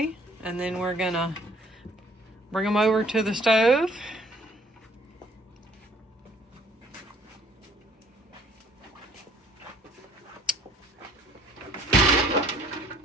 and then we're gonna bring them over to the stove.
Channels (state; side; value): normal; both; correlation 0.59